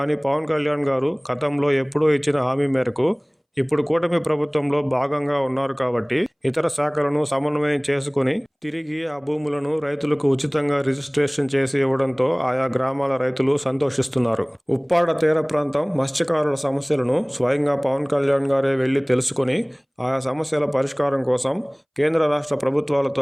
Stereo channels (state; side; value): identical; both; correlation 1.00